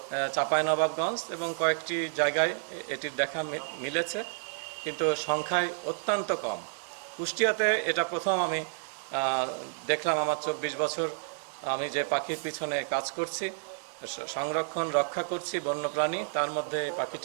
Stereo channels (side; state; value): left; silent; digital silence